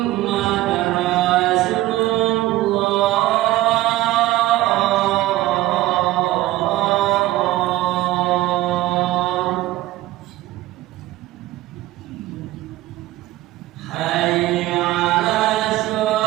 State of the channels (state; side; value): quieter; left; 16.4 dB